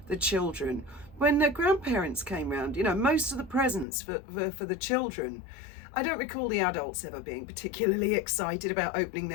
the children. When their grandparents came round, most of the presents for the children, I don't recall the adults ever being particularly excited about opening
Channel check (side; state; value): right; drops out; at 3.9 s